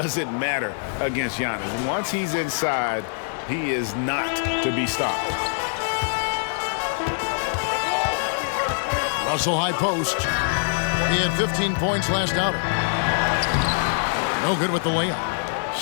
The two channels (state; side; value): silent; right; digital silence